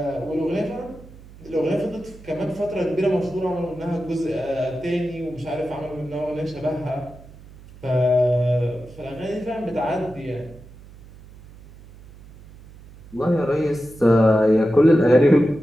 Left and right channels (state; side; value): noise; right; hum, 20 dB below the sound